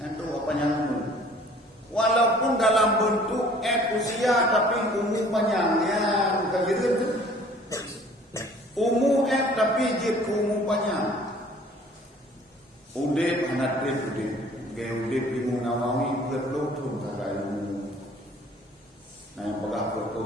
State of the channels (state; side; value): normal; both; correlation 0.53